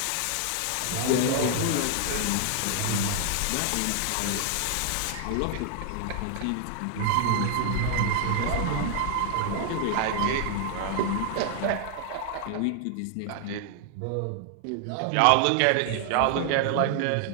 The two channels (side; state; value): both; different; correlation 0.00